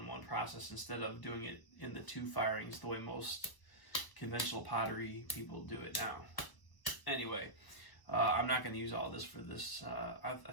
one process instead of doing it in the 2 firings the way most conventional pottery people do it now. Anyway, I'm not going to use all this for this. I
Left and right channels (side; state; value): right; late; 1.0 ms